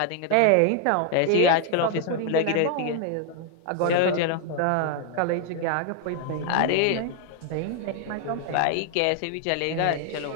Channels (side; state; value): both; different; correlation 0.00